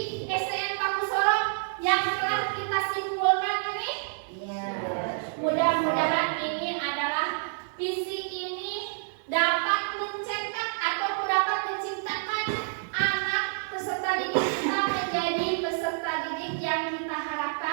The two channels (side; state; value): left; silent; 59 dB below the other